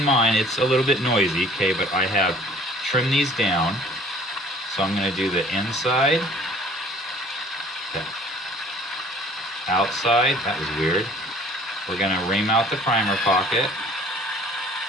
mind it's a little bit noisy, okay, but I have trimmed these down. So I'm gonna do the inside. Okay. Outside, that was weird. We're gonna ream out the primer pocket.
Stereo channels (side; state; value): both; normal; correlation 0.51